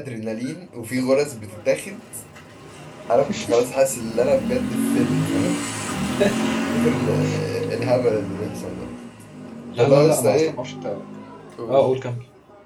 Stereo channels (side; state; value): both; identical; correlation 1.00